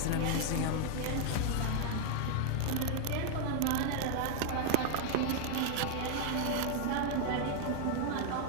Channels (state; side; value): different; both; correlation 0.00